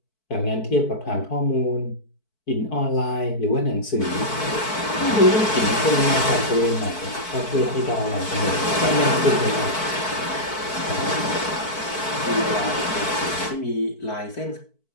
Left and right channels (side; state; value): right; late; 4.6 ms